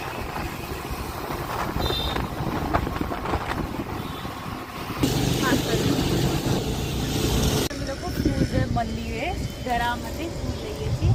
મંદિરે ઘરા માટે ફૂલ લઈએ છીએ.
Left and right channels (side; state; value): both; identical; correlation 1.00